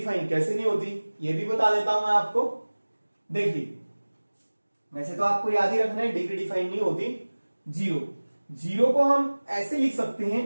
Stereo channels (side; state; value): both; inverted; correlation -1.00